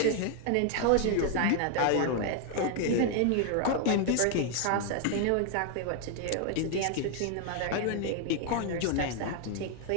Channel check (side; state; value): both; different; correlation 0.00